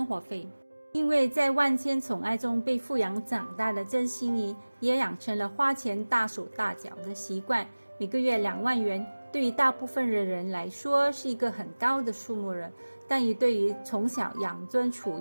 活费。因为在万千宠爱中被富养长大的曾馨怡，也养成了花钱大手大脚的习惯。每个月2万元，对于大部分的人来说是一个很高的数目了，但也对于从小养尊处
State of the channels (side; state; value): both; inverted; correlation -1.00